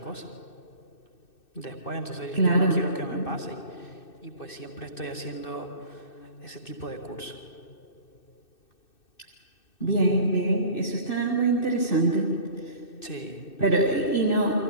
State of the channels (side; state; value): right; late; 2.6 ms